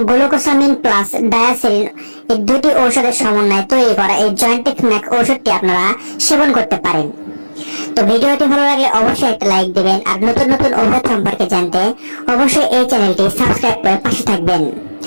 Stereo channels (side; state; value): both; inverted; correlation -1.00